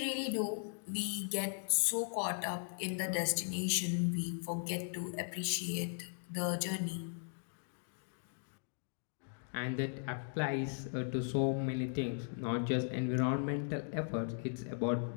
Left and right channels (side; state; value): right; silent; digital silence